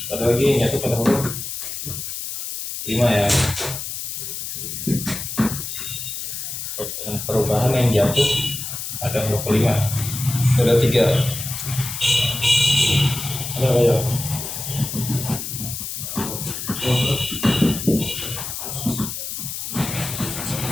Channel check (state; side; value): noise; left; hiss, 6 dB below the sound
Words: Ada lagi yang jatuh pada huruf 5 ya. Perubahan yang jatuh pada huruf kelima. Ada 3. Ada apa ya?